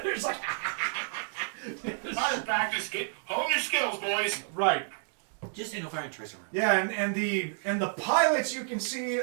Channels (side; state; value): left; silent; digital silence